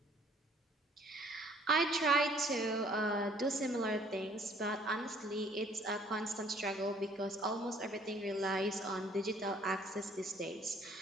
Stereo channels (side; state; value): both; normal; correlation 0.58